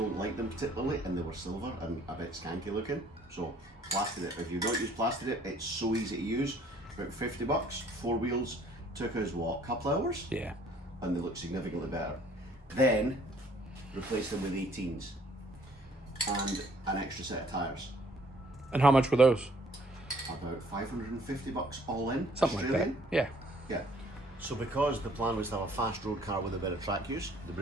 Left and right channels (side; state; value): both; normal; correlation 0.60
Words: like them particularly, and they were silver and a bit skanky looking. So plastered it. If you don't use plastered it, it's so easy to use. About 50 bucks, 4 wheels. Took us what, a couple hours? Yeah. And they look significantly better. Then replaced them with 18s and an extra set of tyres. And how much were those? About 550 bucks all in. Something Australian. like that. Yeah. Yeah. So because the plan was to have a fast road car with a bit of track use, the